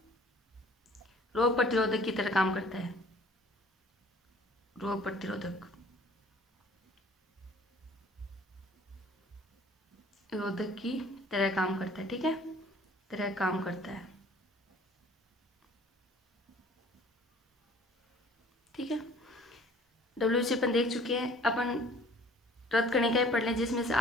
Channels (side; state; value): both; normal; correlation 0.52